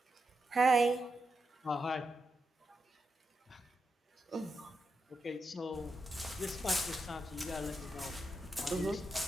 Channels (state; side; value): normal; both; correlation 0.86